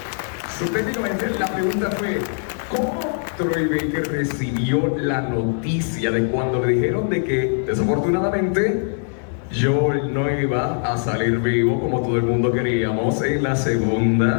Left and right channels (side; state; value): right; silent; 65 dB below the other